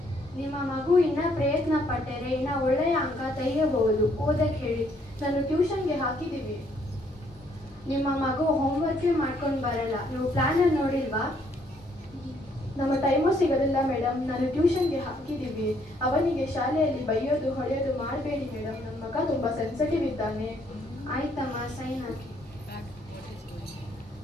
ನಿಮ್ಮ ಮಗು ಇನ್ನ ಪ್ರಯತ್ನ ಪಟ್ಟರೆ ಇನ್ನ ಒಳ್ಳೆಯ ಅಂಕ ತೆಗೆಯಬಹುದು. ಓದಕ್ಕೆ ಹೇಳಿ. ನಾನು ಟ್ಯೂಷನ್ಗೆ ಹಾಕಿದ್ದೀವಿ. ನಿಮ್ಮ ಮಗು ಹೋಮ್ವರ್ಕೇ ಮಾಡ್ಕೊಂಡು ಬರಲ್ಲ. ನೀವು ಪ್ಲಾನ್ ನೋಡಿಲ್ವಾ? ನಮ್ಮ ಟೈಮು ಸಿಗೋದಿಲ್ಲ ಮೇಡಮ್. ನಾನು ಟ್ಯೂಷನ್ಗೆ ಹಾಕಿದ್ದೀವಿ. ಅವನಿಗೆ ಶಾಲೆಯಲ್ಲಿ ಬೈಯೋದು ಹೊಡೆಯೋದು ಮಾಡಬೇಡಿ ಮೇಡಮ್. ನನ್ನ ಮಗ ತುಂಬ ಸೆನ್ಸಿಟಿವ್ ಇದ್ದಾನೆ. ಆಯ್ತಮ್ಮ, ಸೈನ್ ಹಾಕಿ.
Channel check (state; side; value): normal; both; correlation 0.68